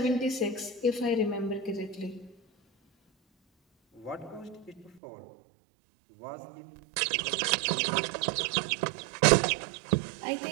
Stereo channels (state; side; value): drops out; left; at 5.0 s